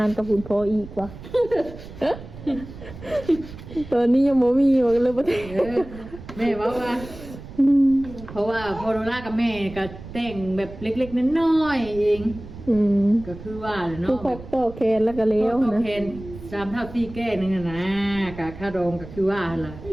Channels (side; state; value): right; noise; rumble, 14 dB below the sound